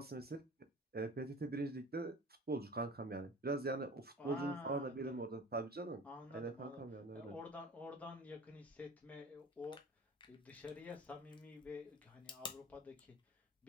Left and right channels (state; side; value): normal; both; correlation 0.40